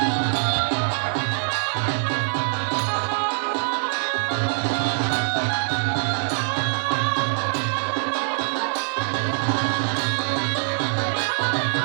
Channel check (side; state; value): left; silent; digital silence